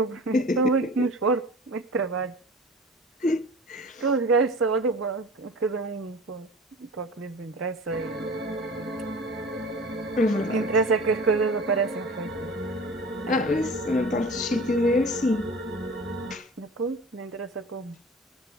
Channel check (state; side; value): normal; both; correlation 0.39